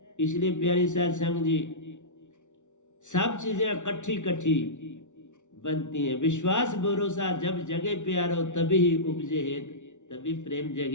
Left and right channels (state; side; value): late; right; 0.85 ms